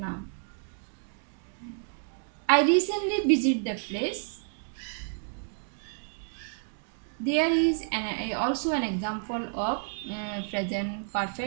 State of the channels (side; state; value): left; silent; digital silence